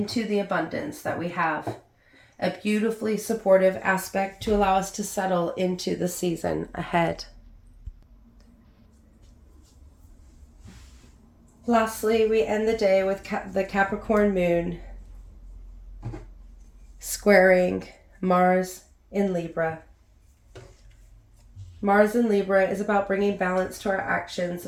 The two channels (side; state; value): both; identical; correlation 1.00